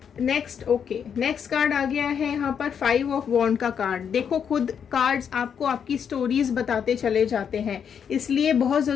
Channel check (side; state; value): right; quieter; 7.6 dB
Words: नेक्स्ट कार्ड आ गया है यहाँ पर 5 ऑफ वॉन्ड का कार्ड। देखो, खुद कार्ड्स आपको आपकी स्टोरीज बताते चले जाते हैं, इसलिए बहुत